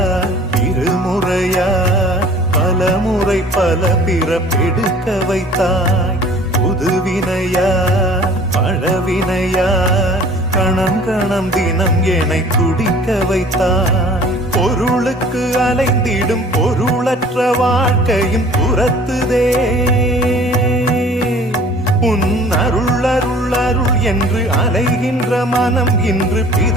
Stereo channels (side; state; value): both; normal; correlation 0.50